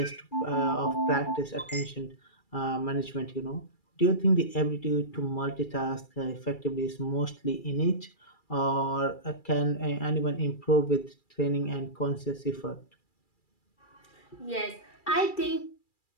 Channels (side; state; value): right; late; 2.3 ms